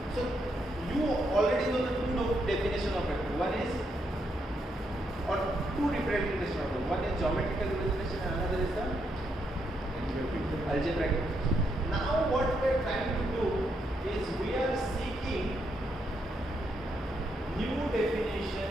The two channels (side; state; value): both; normal; correlation 0.78